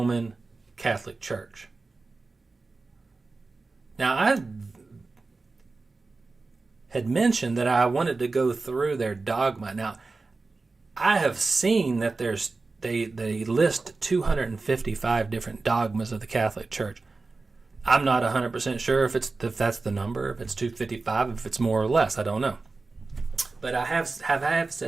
Catholic Church. Now, I had mentioned that I wanted to go through their dogma. Now, I have seen that they list 255 different dogmas of the Catholic Church. I'm not 100% sure if that's the number, if it's 255, if it's more or less. I don't know. But I have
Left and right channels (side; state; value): left; quieter; 3.8 dB